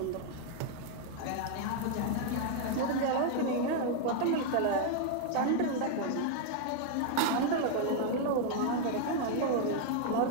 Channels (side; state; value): both; different; correlation 0.00